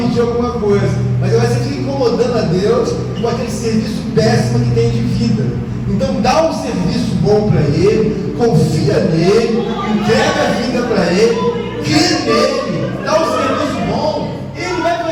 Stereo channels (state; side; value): identical; both; correlation 1.00